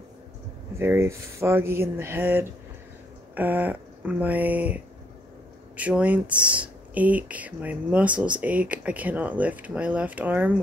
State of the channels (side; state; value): both; normal; correlation 0.70